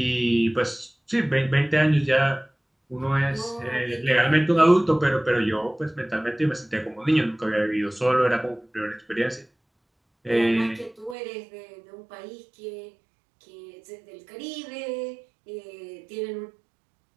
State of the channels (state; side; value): drops out; left; at 11.2 s